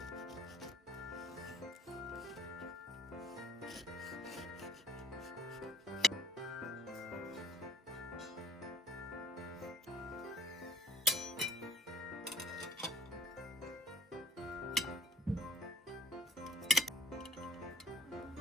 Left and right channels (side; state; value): both; normal; correlation 0.58